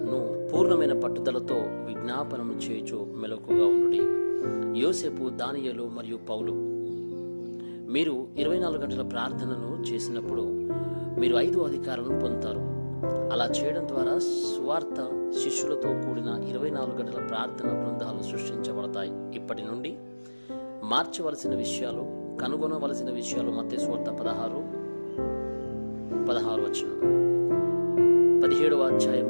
పూర్ణమైన పట్టుదలతో విజ్ఞాపనము చేయుచు మెలకుగా ఉండుడి. యోసేపు, దానియేలు మరియు పౌలు. మీరు 24 గంటల ప్రార్థనను చేసినప్పుడు మీరు 5 అధికారాలను పొందుతారు. అలా చేయడం ద్వారా సువార్త శిష్యులతో కూడిన 24 గంటల ప్రార్థన బృందాలు సృష్టించబడతాయి. ఇప్పటి నుండి మార్చవలసిన విషయాలు, కనుగొనవలసిన విషయాలు మత్తయి సువార్త 16 17వ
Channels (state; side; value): inverted; both; correlation -1.00